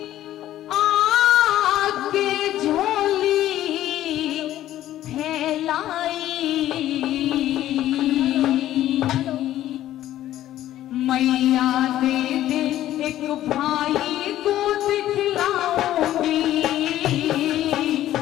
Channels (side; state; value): right; quieter; 13.2 dB